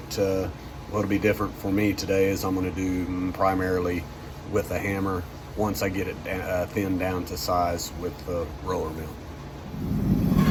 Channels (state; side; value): identical; both; correlation 1.00